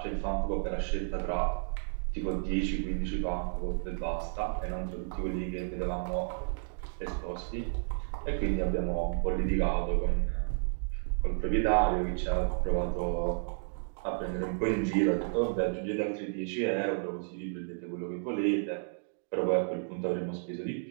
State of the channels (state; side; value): silent; left; digital silence